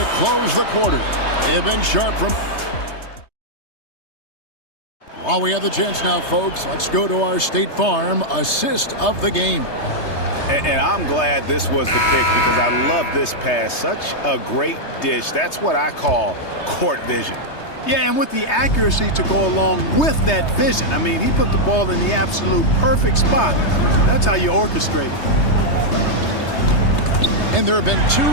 close the quarter. They have been sharp from... While we have the chance now, folks, let's go to our State Farm assist of the game. And I'm glad this was the pick because I love this pass. Such a great dish. That's what I call court vision. Yeah, and with the accuracy to go along with that vision. I mean, he put the ball in the absolute perfect spot. That's how you orchestrate it. And there have been two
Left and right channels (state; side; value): late; right; 3.2 ms